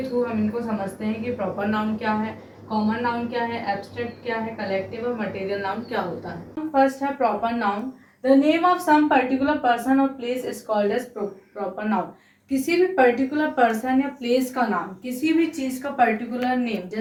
थ्रू हम इनको समझते हैं कि प्रॉपर नाउन क्या है, कॉमन नाउन क्या है, एब्स्ट्रैक्ट क्या है, कलेक्टिव और मटेरियल नाउन क्या होता है। फर्स्ट है proper noun. The name of some particular person और place is called as proper noun. किसी भी पर्टिकुलर पर्सन या प्लेस का नाम, किसी भी चीज का पर्टिकुलर नेम,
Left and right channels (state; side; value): identical; both; correlation 1.00